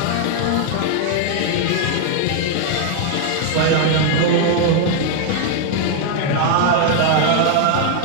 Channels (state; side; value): different; both; correlation 0.00